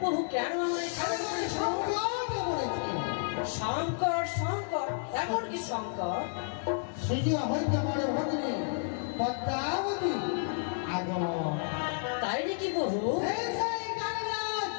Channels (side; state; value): right; silent; digital silence